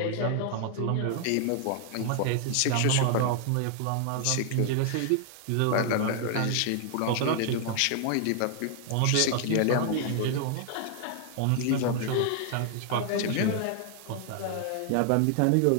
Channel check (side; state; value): both; different; correlation 0.00